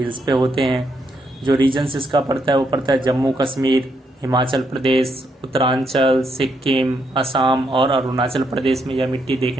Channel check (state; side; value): normal; both; correlation 0.77